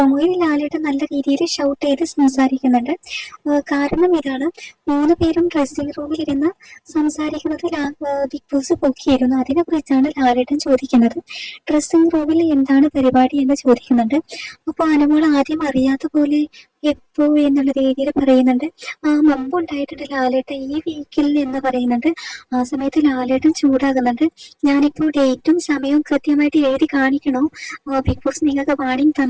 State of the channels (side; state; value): both; identical; correlation 1.00